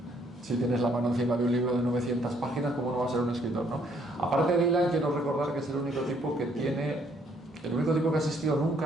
Si tienes la mano encima de un libro de 900 páginas, ¿cómo no va a ser un escritor, no? Aparte de Dylan, quiero recordar que es el único tipo que ha existido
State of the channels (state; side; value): normal; both; correlation 0.67